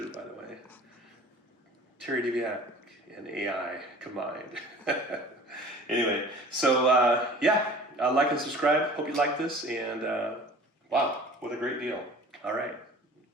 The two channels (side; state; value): both; normal; correlation 0.45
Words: by the way. Terry Diviak and AI combined. Anyway, so yeah, like and subscribe. Hope you like this, and wow, what a great deal. All right,